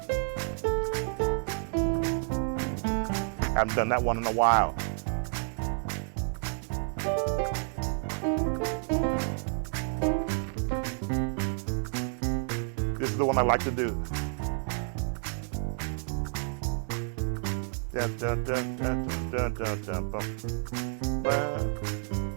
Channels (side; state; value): left; silent; 58 dB below the other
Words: Haven't done that one in a while. This is the one I like to do. Dun, dun, dun, dun, dun, dun, dun, dun.